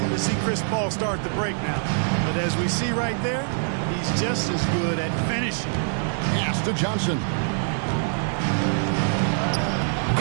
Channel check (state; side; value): silent; left; 62 dB below the other